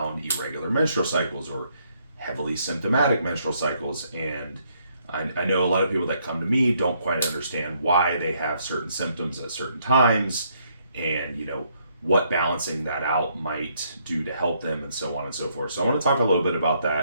irregular menstrual cycles or heavily symptomatic menstrual cycles, and I know a lot of people that come to me don't quite understand why they have certain symptoms at certain times, and what balancing that out might do to help them, and so on and so forth. So I want to talk a little bit about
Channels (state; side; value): inverted; both; correlation -0.71